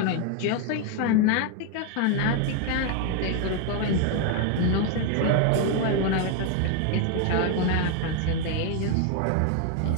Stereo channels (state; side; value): different; both; correlation 0.01